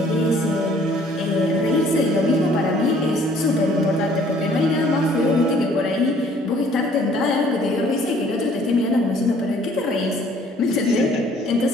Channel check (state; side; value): normal; both; correlation 0.58